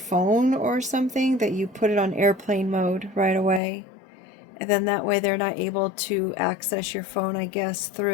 or something, that you put it on airplane mode right away. And then that way they're not able to access your phone, I guess,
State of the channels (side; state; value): right; drops out; at 3.6 s